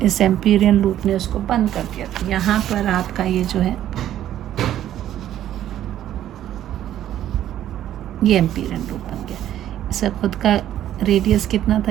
इस एम्पीरियन लूप ने उसको बंद कर दिया। तो यहाँ पर आपका ये जो है ये एम्पीरियन लूप बन गया। इसका खुद का रेडियस कितना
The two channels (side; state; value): left; quieter; 11.9 dB